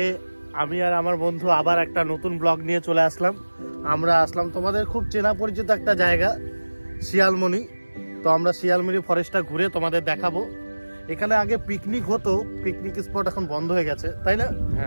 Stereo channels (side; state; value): both; inverted; correlation -1.00